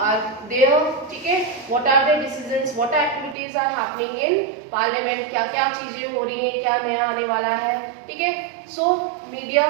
there, ठीक है, what are the decisions, what activities are happening in parliament, क्या क्या चीजें हो रही हैं, क्या नया आने वाला है, ठीक है। So media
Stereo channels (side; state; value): left; drops out; at 3.4 s